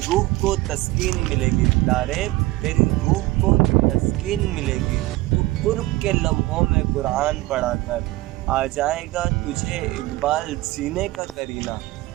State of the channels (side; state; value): left; quieter; 19.1 dB